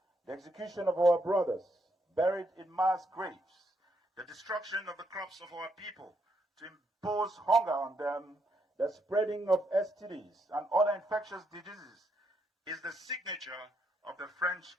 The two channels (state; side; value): normal; both; correlation 0.77